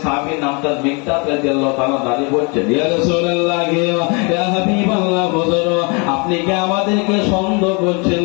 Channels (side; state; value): right; quieter; 32.0 dB